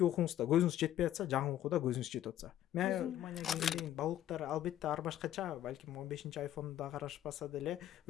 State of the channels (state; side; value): quieter; right; 12.1 dB